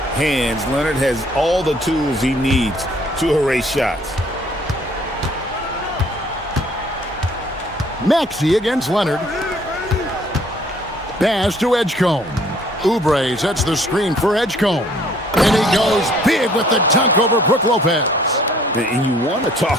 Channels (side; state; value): both; normal; correlation 0.59